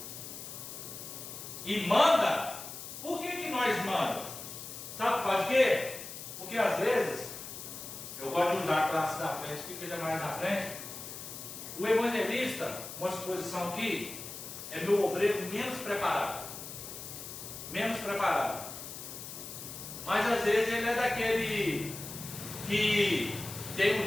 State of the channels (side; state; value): left; noise; hiss, 10 dB below the sound